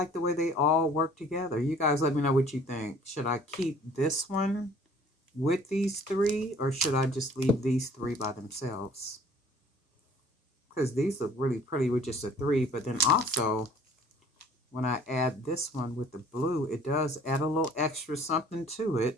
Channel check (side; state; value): both; normal; correlation 0.53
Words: the way they all work together. You guys let me know what you think. Should I keep this one with these 3, or should I just leave these 3 by themselves? Because these look really pretty with just a 3. But then also, when I add this one with the blue, it does add a little extra something to